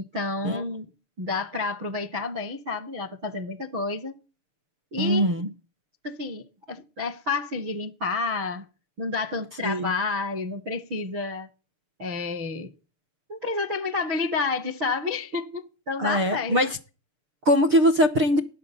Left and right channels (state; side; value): late; left; 6.6 ms